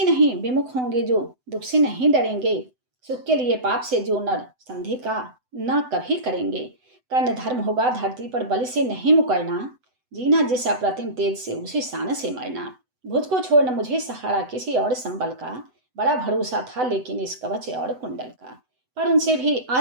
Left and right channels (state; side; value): late; left; 7.9 ms